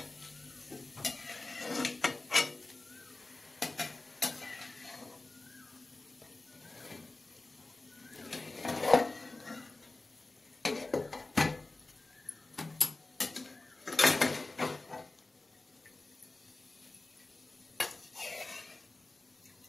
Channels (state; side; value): quieter; right; 3.1 dB